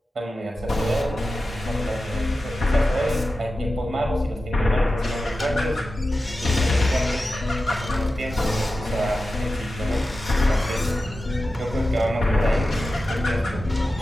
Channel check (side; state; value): both; normal; correlation 0.93